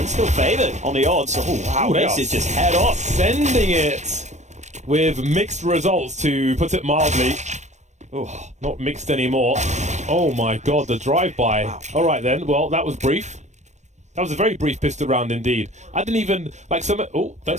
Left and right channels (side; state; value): left; late; 0.34 ms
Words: still favoured on the odds. Oh wow, this is just head off. Sending it with mixed results, to put it mildly. Oh, not mixed anymore. Oh my god, the drive-by. Wow. Alright then, well that was brief. That was a very brief pistol round indeed. I didn't even, like some, oh,